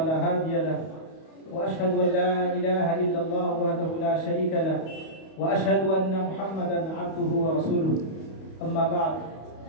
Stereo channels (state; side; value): late; right; 31 ms